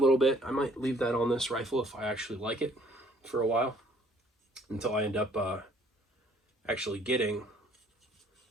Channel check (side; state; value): both; normal; correlation 0.60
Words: bit. I might leave that on this rifle if I actually like it for a while, until I end up actually getting